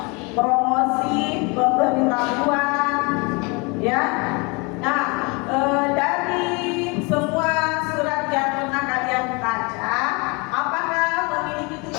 promosi, pemberitahuan, ya. Nah, dari semua surat yang pernah kalian baca, apakah memiliki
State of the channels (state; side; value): quieter; right; 29.1 dB